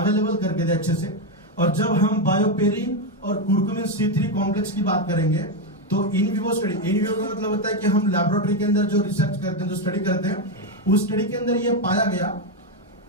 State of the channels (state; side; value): normal; both; correlation 0.06